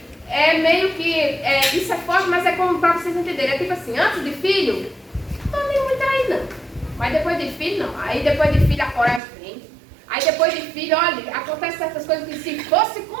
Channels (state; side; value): drops out; left; at 9.2 s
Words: meio que, isso é forte, mas é como para vocês entenderem. É tipo assim, antes de filho, não tô nem muito aí não. Mas depois de filho, não. Aí depois de filho a coragem vem. Aí depois de filho, olha, acontece certas coisas que se fosse